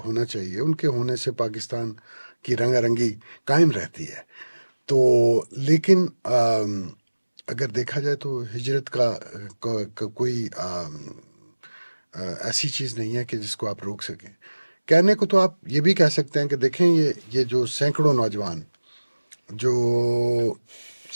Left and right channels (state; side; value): inverted; both; correlation -1.00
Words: ہونا چاہیے. ان کے ہونے سے پاکستان کی رنگا رنگی قائم رہتی ہے. تو لیکن اگر دیکھا جائے تو ہجرت کا کوئی ایسی چیز نہیں ہے کہ جس کو آپ روک سکیں. کہنے کو تو آپ یہ بھی کہہ سکتے ہیں کہ دیکھیں یہ جو سینکڑوں نوجوان جو